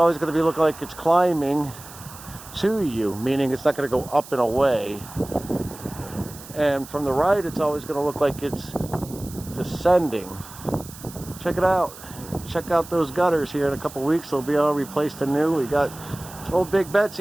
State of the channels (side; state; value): right; noise; hiss, 17 dB below the sound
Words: going to be looking like it's climbing to you, meaning it's not going to go up and away. And from the right, it's always going to look like it's descending. Check it out. Check out those gutters here. In a couple weeks, they'll be all replaced anew. We got old Big